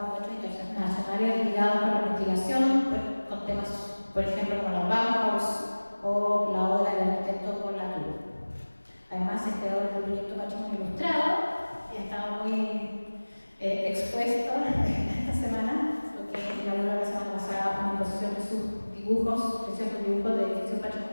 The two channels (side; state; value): both; inverted; correlation -1.00